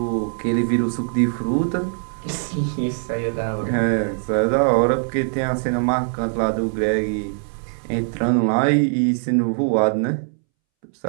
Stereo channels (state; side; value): silent; left; 64 dB below the other